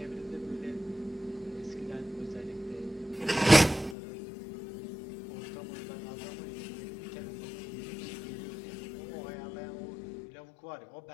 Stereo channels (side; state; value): right; drops out; at 4.0 s